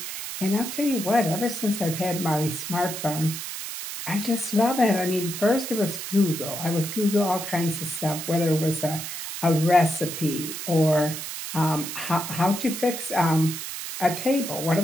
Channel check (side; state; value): right; noise; hiss, 7 dB below the sound